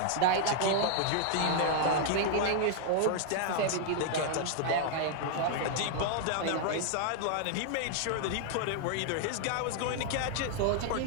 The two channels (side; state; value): both; different; correlation 0.00